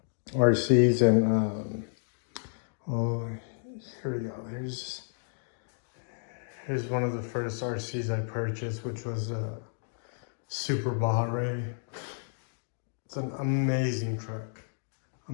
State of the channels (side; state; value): right; silent; digital silence